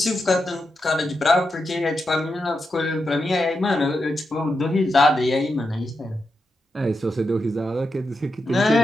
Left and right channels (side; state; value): both; normal; correlation 0.87